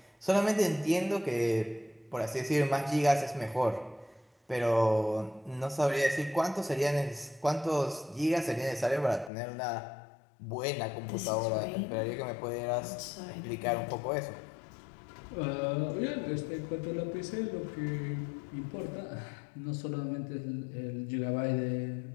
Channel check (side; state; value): right; drops out; at 9.3 s